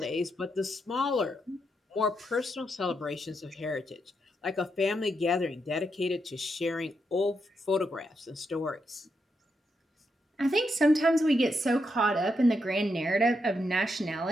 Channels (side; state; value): both; normal; correlation 0.82